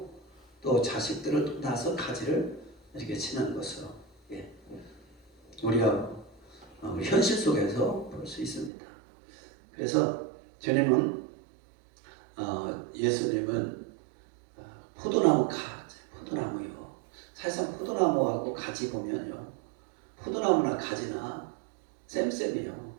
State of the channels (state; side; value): drops out; left; at 8.7 s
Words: 또 자식들을 또 낳아서 가지를 이렇게 치는 것으로 우리가 현실 속에서 볼 수 있습니다. 그래서 주님은 예수님은 포도나무 가지, 포도나무요. 사실상 포도나무하고 가지 보면요, 포도나무나 가지나 쌤쌤이요.